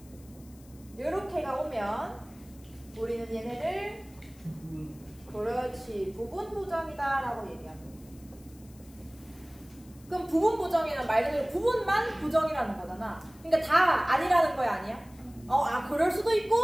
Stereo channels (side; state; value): left; noise; hiss, 26 dB below the sound